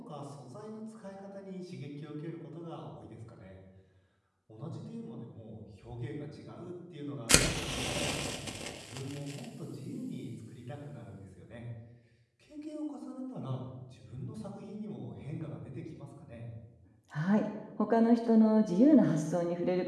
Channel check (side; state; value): both; identical; correlation 1.00